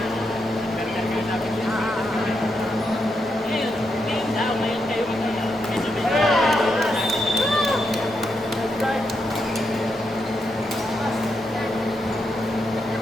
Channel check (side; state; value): both; normal; correlation 0.82